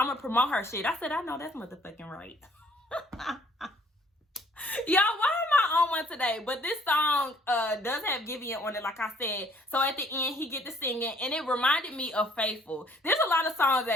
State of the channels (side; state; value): both; normal; correlation 0.61